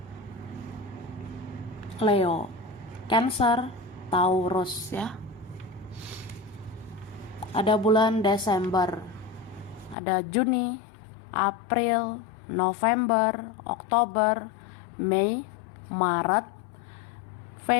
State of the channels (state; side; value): drops out; right; at 10.0 s